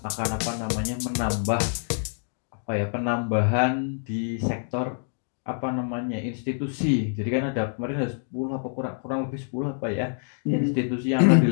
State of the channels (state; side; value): silent; right; digital silence